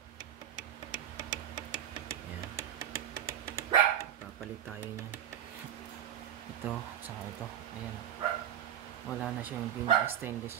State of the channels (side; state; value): left; quieter; 10.5 dB